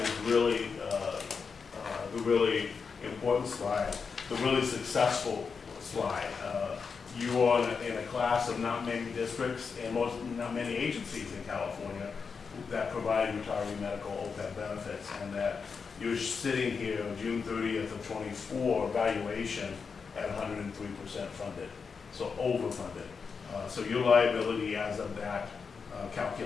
really the really important slide, the really successful slide. You are in a class of not many districts and not many agencies in California that provide retiree medical OPEB benefits, and that you're sitting here June 30th of 24 valuation at 103% funded, so overfunded. So your liability as of that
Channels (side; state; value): right; quieter; 5.4 dB